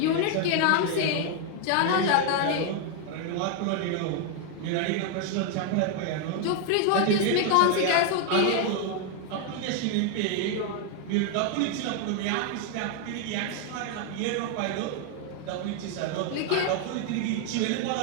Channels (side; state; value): both; different; correlation 0.01